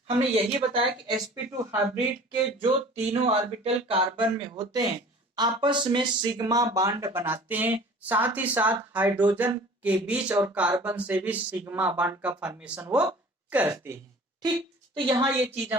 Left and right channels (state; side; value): normal; both; correlation 0.46